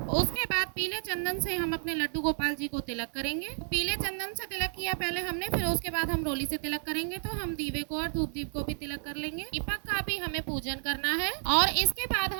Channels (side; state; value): left; silent; digital silence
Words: उसके बाद पीले चंदन से हम अपने लड्डू गोपाल जी को तिलक करेंगे। पीले चंदन से तिलक किया पहले हमने, फिर उसके बाद हम रोली से तिलक करेंगे। तो हम दीवे को और धूप दीप को भी तिलक कर लेंगे। दीपक का भी हमें पूजन करना है और इसके बाद